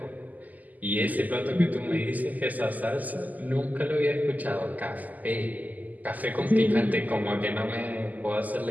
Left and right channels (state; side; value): late; left; 0.080 ms